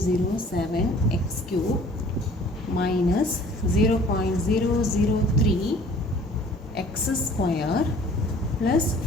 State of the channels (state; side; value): normal; both; correlation 0.51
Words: X cube minus 0.003 X square plus